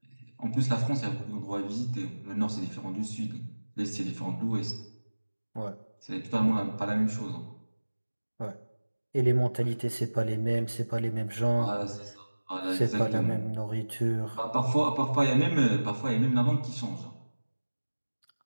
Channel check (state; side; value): inverted; both; correlation -1.00